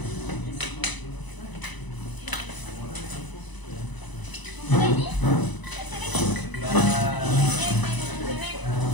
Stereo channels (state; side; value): late; right; 1.0 ms